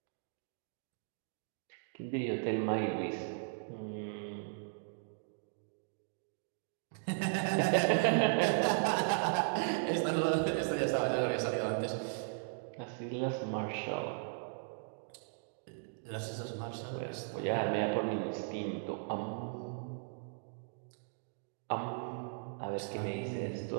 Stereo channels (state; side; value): silent; left; digital silence